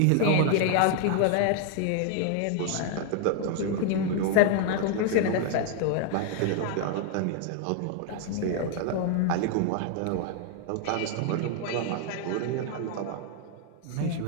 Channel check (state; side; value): different; both; correlation 0.00